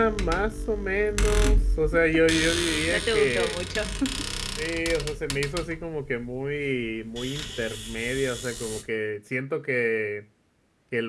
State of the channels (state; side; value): identical; both; correlation 1.00